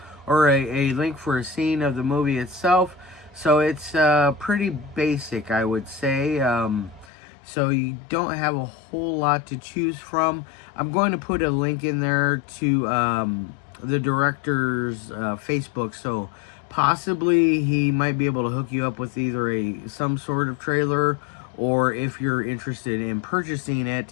or a link for a scene of the movie itself. So it's pretty basic, I would say. So you don't have a whole lot to choose from. I'm going to put a link in there to the director's Facebook. So possibly he might be able to hook you up with either some sort of trailer, or if you're interested in purchasing it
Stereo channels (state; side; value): drops out; right; at 7.1 s